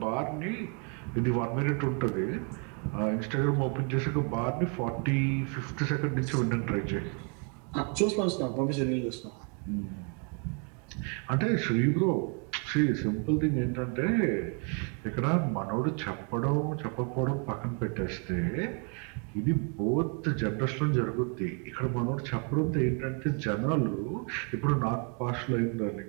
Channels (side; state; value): left; quieter; 38.0 dB